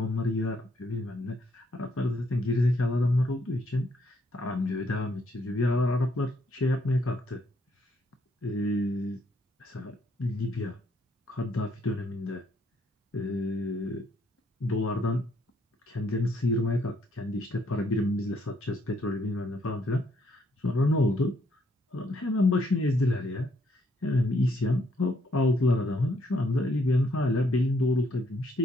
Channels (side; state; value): both; normal; correlation 0.71